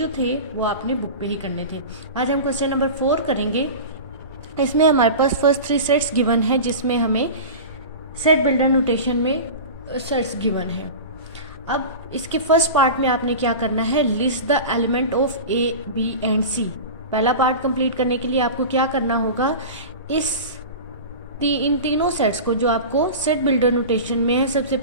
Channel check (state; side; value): inverted; both; correlation -0.30